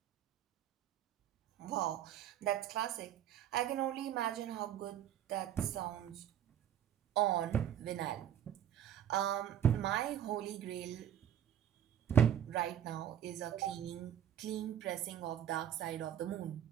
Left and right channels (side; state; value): left; quieter; 10.1 dB